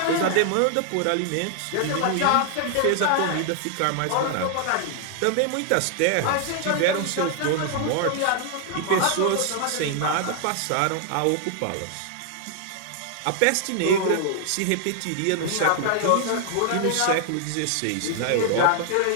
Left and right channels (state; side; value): different; both; correlation 0.00